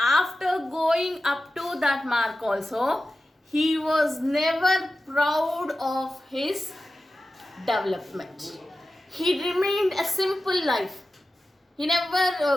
going up to that mark also, he was never proud of his development. He remained a simple life. He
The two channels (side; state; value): both; normal; correlation 0.94